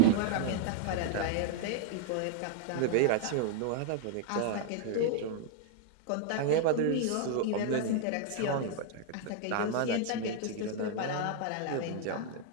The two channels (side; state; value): both; different; correlation 0.00